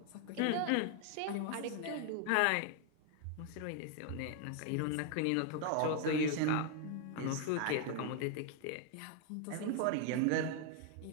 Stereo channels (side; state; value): both; different; correlation 0.00